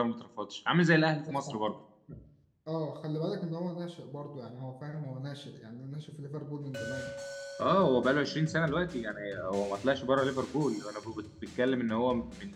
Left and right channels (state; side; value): identical; both; correlation 1.00